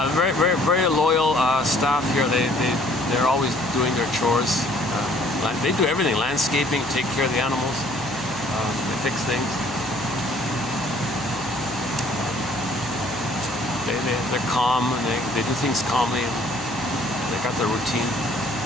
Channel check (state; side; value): noise; left; hum, 18 dB below the sound